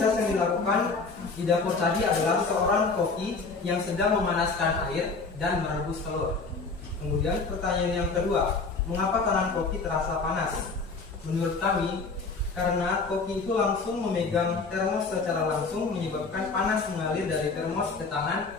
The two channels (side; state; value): right; quieter; 4.2 dB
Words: yang dilakukan di dapur tadi adalah seorang koki yang sedang memanaskan air dan merebus telur. Kemudian pertanyaan yang kedua, mengapa tangan koki terasa panas? Menurut kami, karena koki itu langsung memegang termos secara langsung menyebabkan panas mengalir dari termos ke tangan